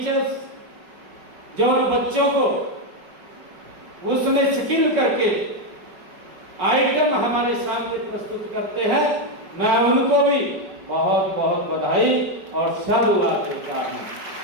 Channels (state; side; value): late; left; 5.4 ms